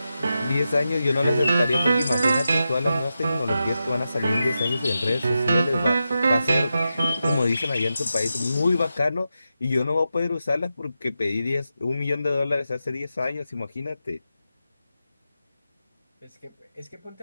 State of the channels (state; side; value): inverted; both; correlation -0.89